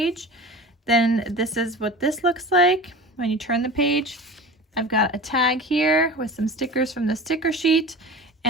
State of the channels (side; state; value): both; normal; correlation 0.35